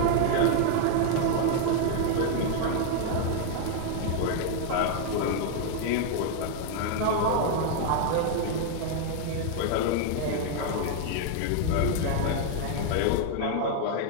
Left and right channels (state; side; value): different; both; correlation 0.00